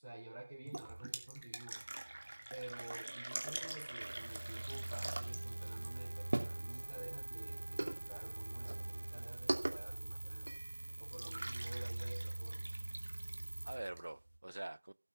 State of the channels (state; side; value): inverted; both; correlation -1.00